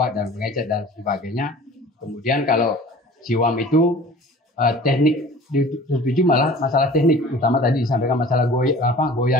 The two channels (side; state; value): both; normal; correlation 0.45